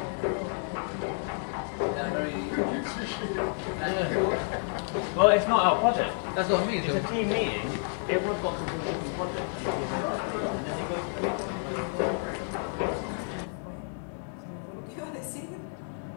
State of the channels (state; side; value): silent; right; 56 dB below the other